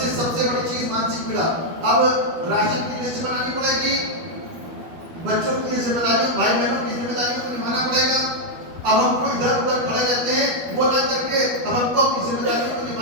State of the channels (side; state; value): left; late; 12 ms